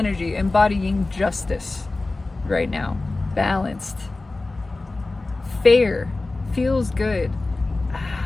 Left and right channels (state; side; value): quieter; right; 3.2 dB